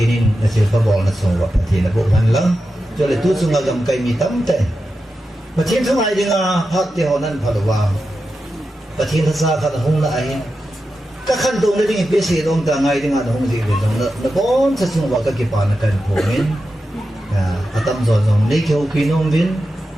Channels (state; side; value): normal; both; correlation 0.90